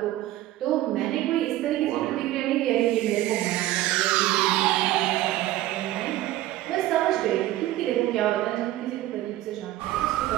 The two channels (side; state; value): left; quieter; 15.3 dB